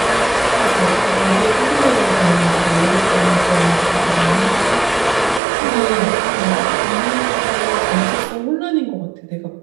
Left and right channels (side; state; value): left; drops out; at 5.4 s